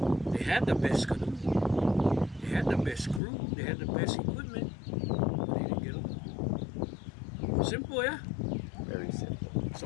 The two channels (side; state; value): right; drops out; at 3.2 s